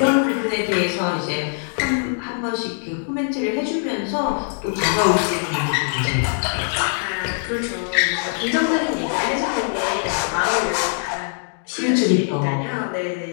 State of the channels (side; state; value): right; silent; digital silence